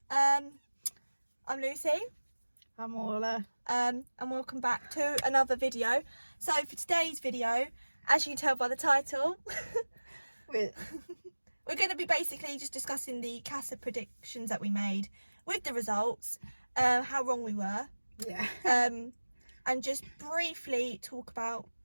I'm Lucy. I'm Orla. And welcome back to another video. So for today's video, as you can tell by the title, we're going to be basically just discussing the Casa predictions that we made with the results, how wrong we were. Yeah. And just briefly talk about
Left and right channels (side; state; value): both; inverted; correlation -1.00